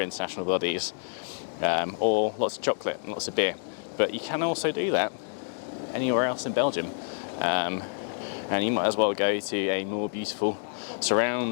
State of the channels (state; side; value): silent; right; 59 dB below the other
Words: international bodies, or lots of chocolate and lots of beer. But you can also do that anywhere else in Belgium, and you might as well go to a more beautiful